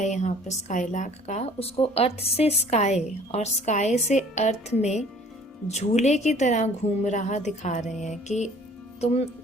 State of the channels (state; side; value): normal; both; correlation 0.52